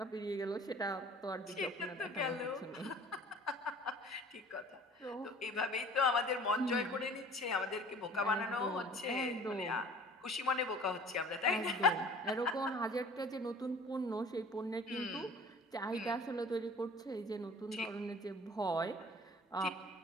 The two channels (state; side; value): normal; both; correlation 0.47